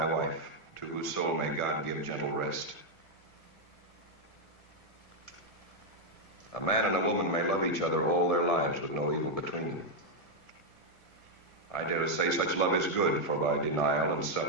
wife, to whose soul may God give gentle rest. A man and a woman may love each other all their lives with no evil between them. I dare to say such love is good, for by denial and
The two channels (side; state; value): right; late; 1.7 ms